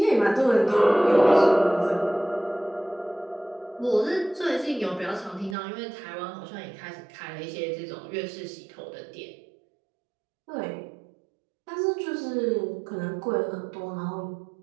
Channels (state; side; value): drops out; left; at 5.6 s